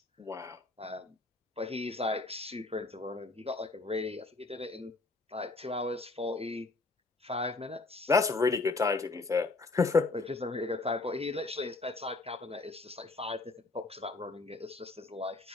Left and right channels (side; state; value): right; quieter; 3.5 dB